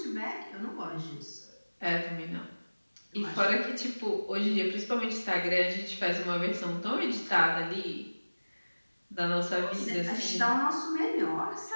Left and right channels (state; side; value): inverted; both; correlation -1.00